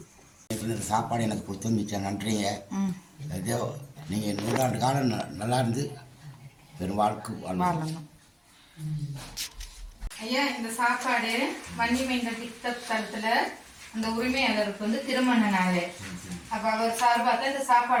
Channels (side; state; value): both; identical; correlation 1.00